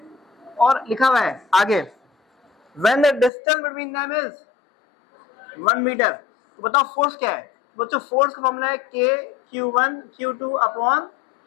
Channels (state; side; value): drops out; right; at 3.3 s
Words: और लिखा हुआ है आगे when the distance between them is 1 metre. तो बताओ फोर्स क्या है बच्चों, फोर्स का फॉर्मूला है Q1 Q2 upon